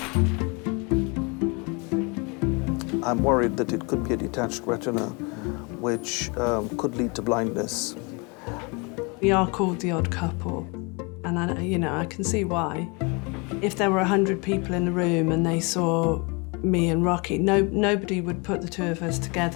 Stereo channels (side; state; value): right; quieter; 29.9 dB